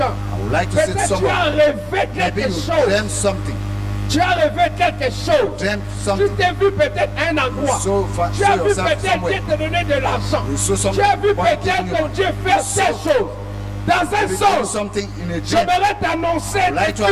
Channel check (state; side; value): identical; both; correlation 1.00